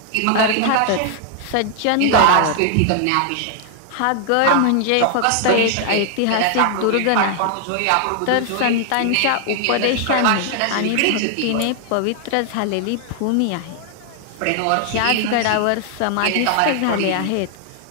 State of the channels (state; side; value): different; both; correlation 0.00